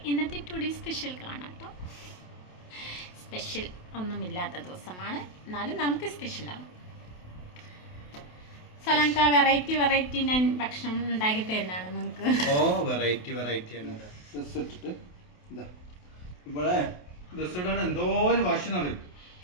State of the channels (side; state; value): right; late; 28 ms